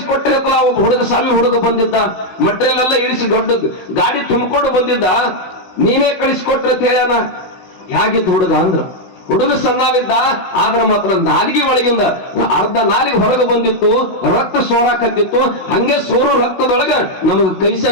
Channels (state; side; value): late; right; 16 ms